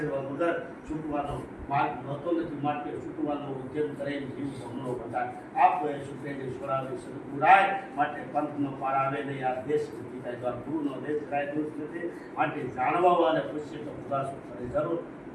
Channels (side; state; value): both; identical; correlation 1.00